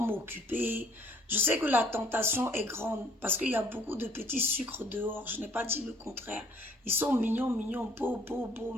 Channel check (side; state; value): both; normal; correlation 0.61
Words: occupés, Je sais que la tentation est grande parce qu'il y a beaucoup de petits sucres dehors. Je n'ai pas dit le contraire. Ils sont mignons, mignons, beaux, beaux, beaux,